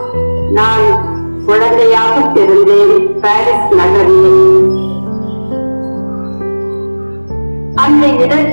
நான் குழந்தையாக பிறந்தேன் பாரிஸ் நகரில். அந்த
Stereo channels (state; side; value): inverted; both; correlation -1.00